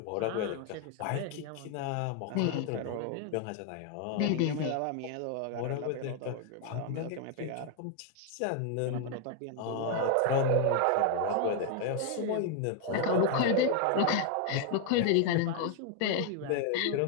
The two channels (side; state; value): both; different; correlation 0.01